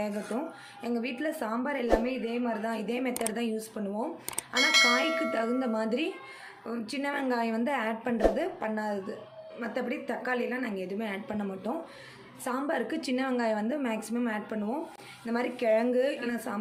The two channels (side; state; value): both; identical; correlation 1.00